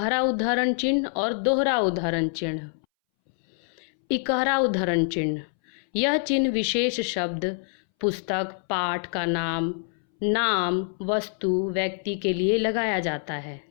उद्धरण चिन्ह और दोहरा उद्धरण चिन्ह। इकहरा उद्धरण चिन्ह, यह चिन्ह विशेष शब्द, पुस्तक, पाठ का नाम, नाम वस्तु व्यक्ति के लिए लगाया जाता है।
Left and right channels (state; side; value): silent; right; 61 dB below the other